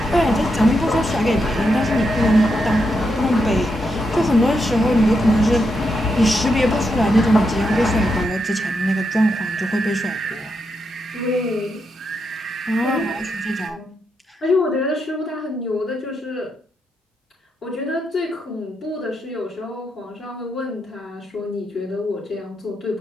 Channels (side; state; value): both; normal; correlation 0.83